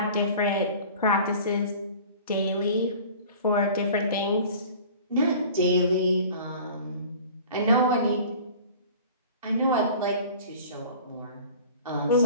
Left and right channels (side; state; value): both; inverted; correlation -0.43